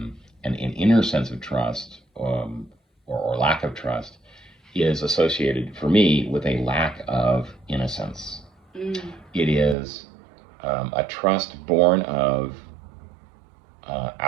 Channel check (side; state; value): left; drops out; at 9.8 s